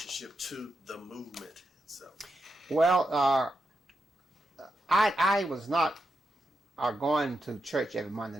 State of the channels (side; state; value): both; normal; correlation 0.86